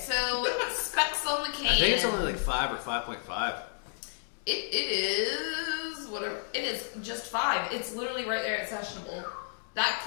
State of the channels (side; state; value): right; silent; digital silence